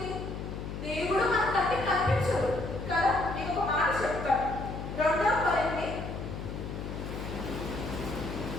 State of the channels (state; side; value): noise; left; hum, 7 dB below the sound